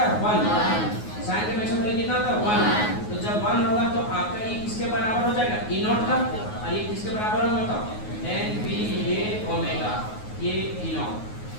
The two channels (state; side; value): late; right; 9.5 ms